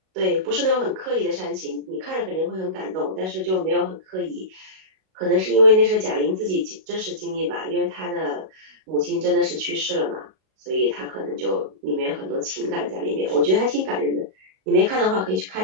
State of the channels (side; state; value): left; late; 37 ms